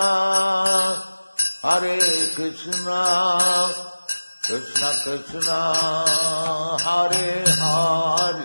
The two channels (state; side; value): inverted; both; correlation -1.00